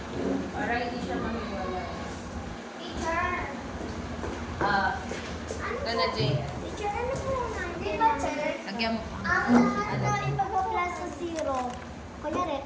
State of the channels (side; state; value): both; identical; correlation 1.00